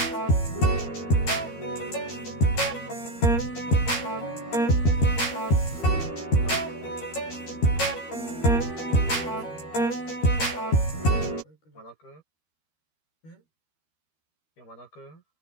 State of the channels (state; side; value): late; right; 13 ms